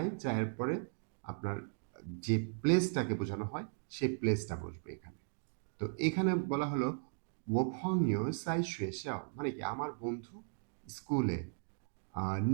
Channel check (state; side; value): silent; left; digital silence